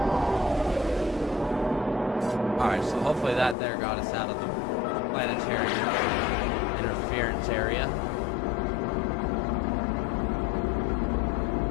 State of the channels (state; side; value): drops out; right; at 3.6 s